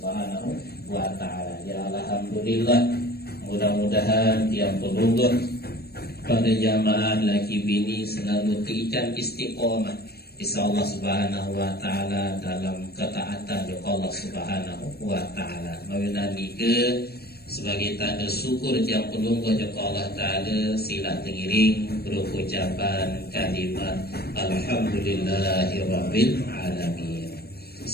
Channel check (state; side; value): late; right; 0.46 ms